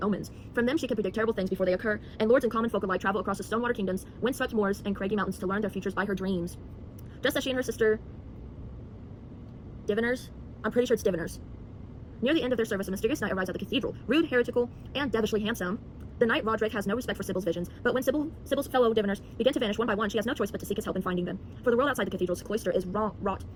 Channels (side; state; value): both; identical; correlation 1.00